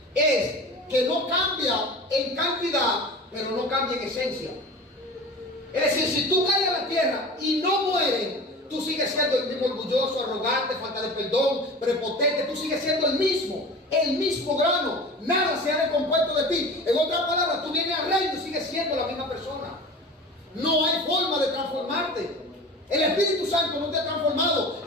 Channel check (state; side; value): normal; both; correlation 0.36